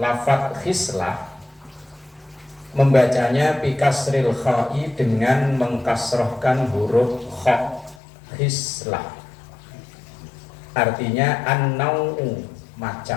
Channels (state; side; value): drops out; right; at 8.0 s